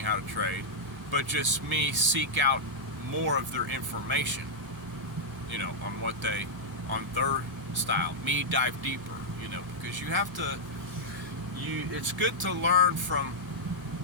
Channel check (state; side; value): normal; both; correlation -0.07